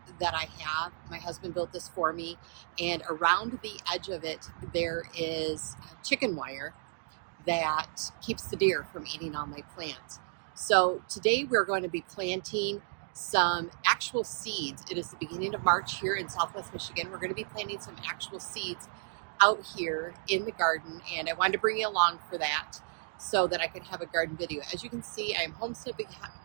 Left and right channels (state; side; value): silent; left; digital silence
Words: that I have. My husband built this for me, and around the edge of it there is chicken wire that keeps the deer from eating all my plants. So today we're going to be planting some actual seeds. It is the beginning of March here in Southwest Michigan. We're going to be planting some actual seeds out here in the garden, and I wanted to bring you along for that so that I could have a garden video. As you can see, I am homestead